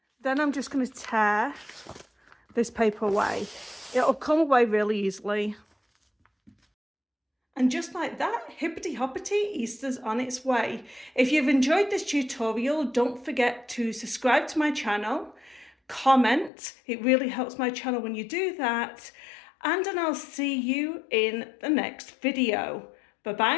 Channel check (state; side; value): drops out; right; at 16.5 s